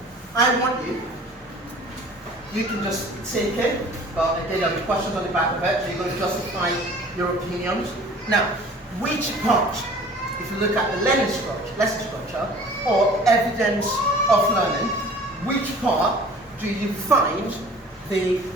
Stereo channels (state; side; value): normal; both; correlation 0.48